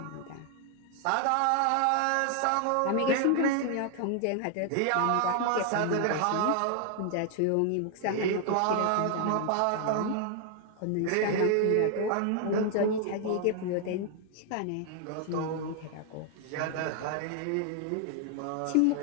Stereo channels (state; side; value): different; both; correlation 0.00